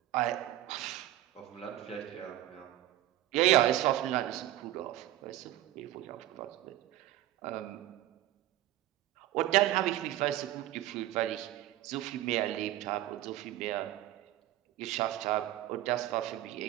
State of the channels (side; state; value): left; quieter; 14.4 dB